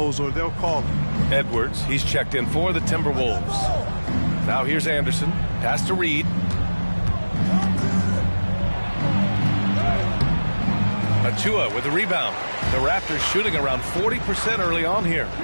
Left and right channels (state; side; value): inverted; both; correlation -1.00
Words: or they'll call it. Edwards, he's checked in for the Timberwolves. Now here's Anderson. Pass to Reed. Achua with the rebound. The Raptors shooting around 40% early on here.